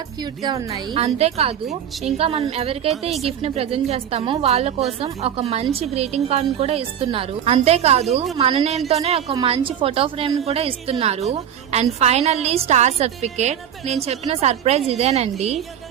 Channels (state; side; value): quieter; left; 9.4 dB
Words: క్యూట్ గా ఉన్నాయి. అంతేకాదు ఇంకా మనం ఎవరికైతే ఈ గిఫ్ట్ ని ప్రెజెంట్ చేస్తామో వాళ్ళ కోసం ఒక మంచి గ్రీటింగ్ కార్డ్ ని కూడా ఇస్తున్నారు. అంతేకాదు మన నేమ్ తోనే ఒక మంచి ఫోటో ఫ్రేమ్ ని కూడా ఇస్తున్నారు. And finally star certificate. నేను చెప్పిన సర్ప్రైజ్ ఇదేనండి.